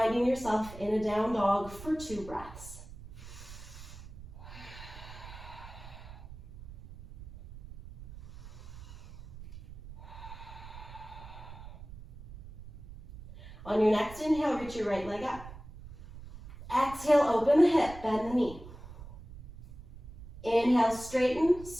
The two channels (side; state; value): right; noise; rumble, 15 dB below the sound